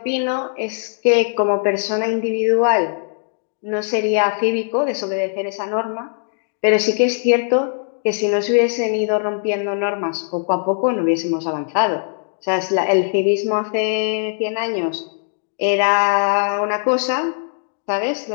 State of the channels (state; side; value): silent; right; digital silence